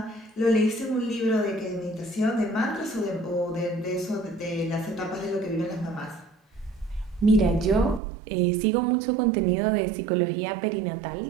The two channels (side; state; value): left; drops out; at 8.0 s